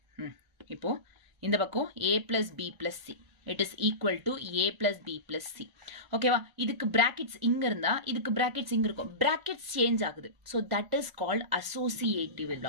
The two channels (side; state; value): left; late; 1.4 ms